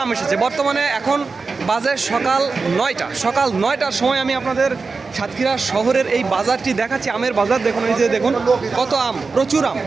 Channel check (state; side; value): quieter; left; 4.4 dB